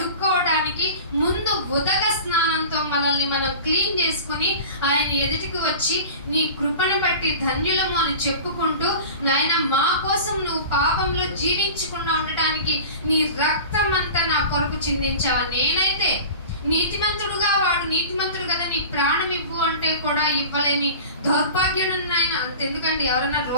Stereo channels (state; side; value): inverted; both; correlation -0.36